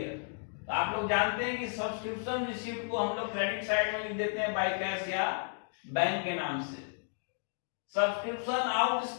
तो आप लोग जानते हैं कि सब्सक्रिप्शन रिसीव्ड को हम लोग क्रेडिट साइड में लिख देते हैं बाय कैश या बैंक के नाम से। सब्सक्रिप्शन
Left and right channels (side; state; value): right; silent; digital silence